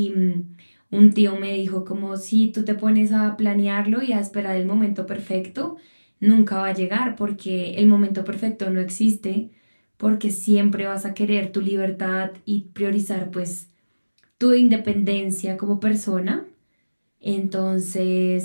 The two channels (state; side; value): inverted; both; correlation -1.00